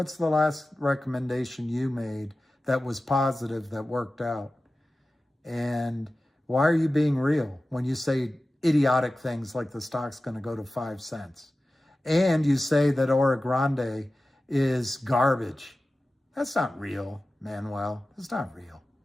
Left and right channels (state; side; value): normal; both; correlation 0.95